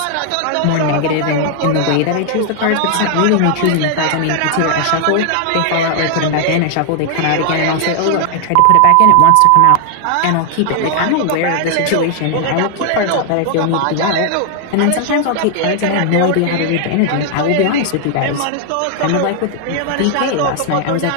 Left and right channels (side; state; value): both; different; correlation 0.00